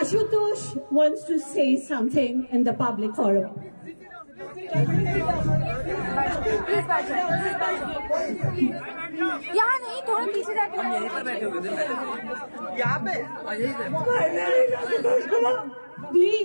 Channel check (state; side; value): inverted; both; correlation -1.00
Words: wants to say something in the public forum. यहाँ नहीं, थोड़ा पीछे जाके यहाँ पे